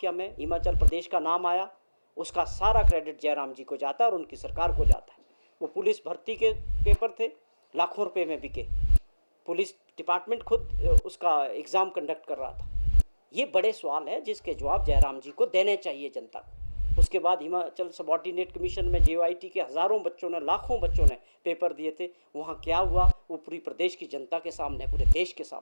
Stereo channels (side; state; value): both; inverted; correlation -1.00